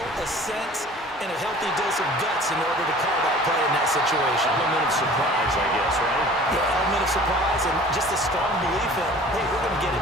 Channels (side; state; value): both; normal; correlation 0.46